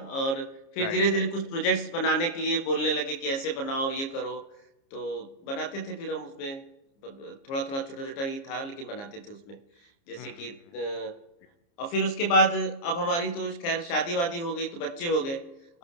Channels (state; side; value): late; right; 29 ms